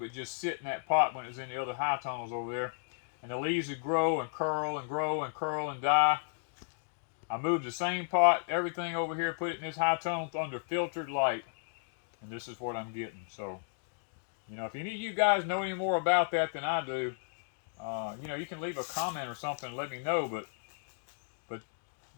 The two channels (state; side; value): silent; right; digital silence